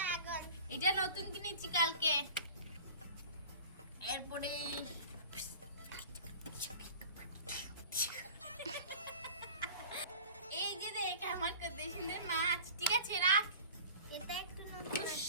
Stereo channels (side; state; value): both; inverted; correlation -0.38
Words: এটা নতুন কিনেছি কালকে। এরপরে এই যে দেখ আমার কত সুন্দর মাছ, ঠিক আছে রাখ। এটা একটু নতুন